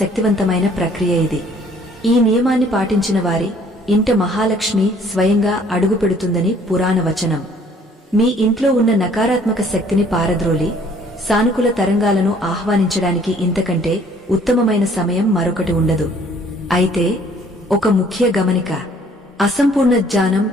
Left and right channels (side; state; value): both; normal; correlation 0.58